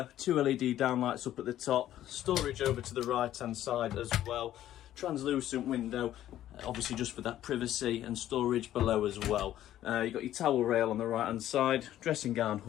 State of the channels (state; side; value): quieter; right; 12.6 dB